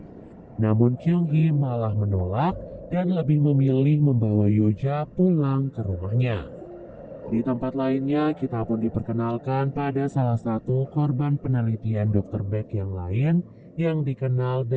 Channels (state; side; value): identical; both; correlation 1.00